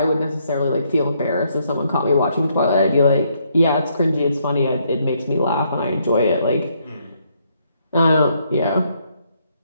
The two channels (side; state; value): both; inverted; correlation -0.73